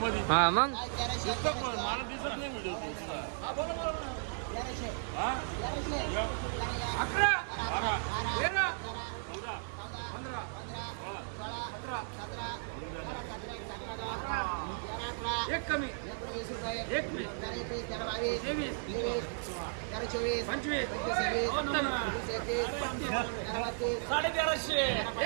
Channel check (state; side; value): silent; left; digital silence